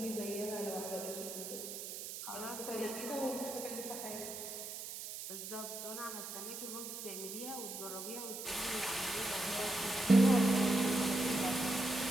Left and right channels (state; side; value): noise; right; hiss, 8 dB below the sound